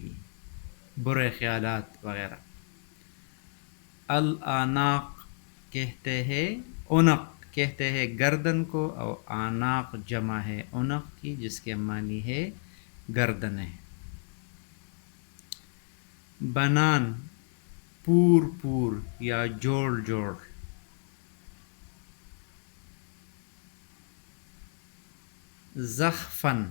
برے خیالات وغیرہ۔ الاناق کہتے ہیں عنق کہتے ہیں گردن کو، اور آناق جمع ہے عنق کی جس کے معنی ہے گردنیں۔ بنان پور پور یا جوڑ جوڑ۔ زخفن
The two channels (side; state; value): right; silent; 57 dB below the other